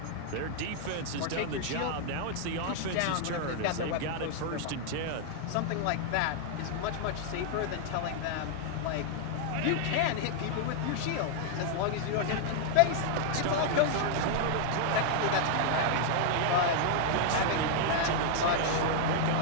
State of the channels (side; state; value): both; different; correlation 0.00